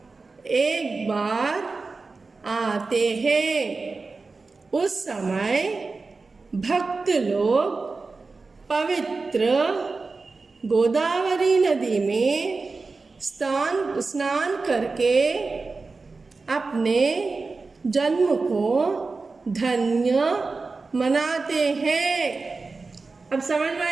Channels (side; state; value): left; quieter; 4.0 dB